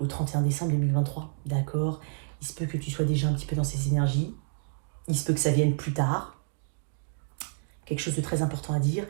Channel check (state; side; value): silent; left; digital silence